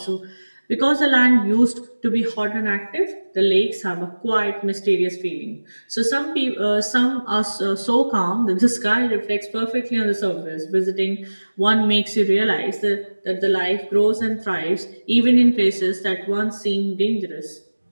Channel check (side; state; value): both; inverted; correlation -1.00